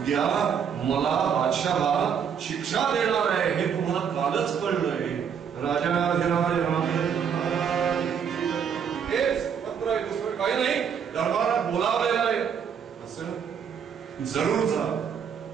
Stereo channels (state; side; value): quieter; left; 7.4 dB